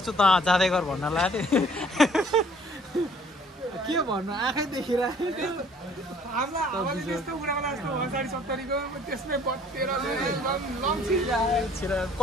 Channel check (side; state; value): both; normal; correlation 0.57